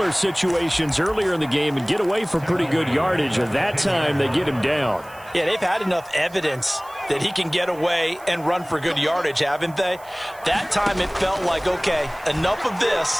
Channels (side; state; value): right; noise; hiss, 24 dB below the sound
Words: situations earlier in the game and get away from pretty good yardage, and that time they get him down. Yeah, they've had enough evidence that he can get away and run for good yardage, haven't they? That time it felt like, okay, enough of